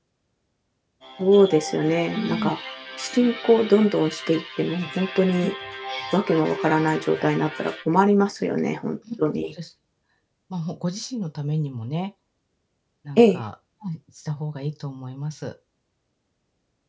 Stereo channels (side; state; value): both; identical; correlation 1.00